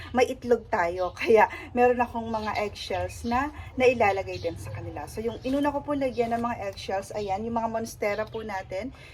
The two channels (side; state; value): both; identical; correlation 1.00